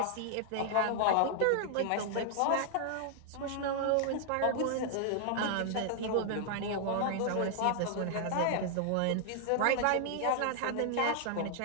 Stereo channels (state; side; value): different; both; correlation -0.01